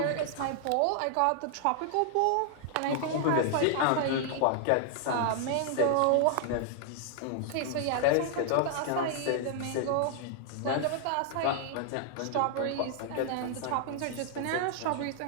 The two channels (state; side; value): different; both; correlation 0.00